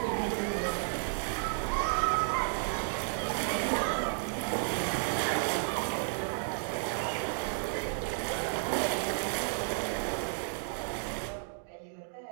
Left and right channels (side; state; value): left; silent; digital silence